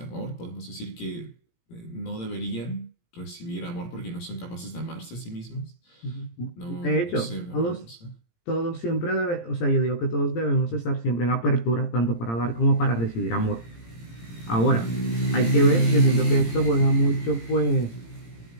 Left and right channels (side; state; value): right; late; 17 ms